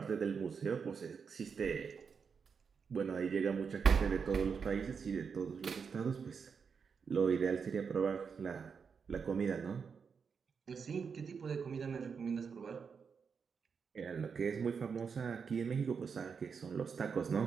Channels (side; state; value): left; quieter; 6.0 dB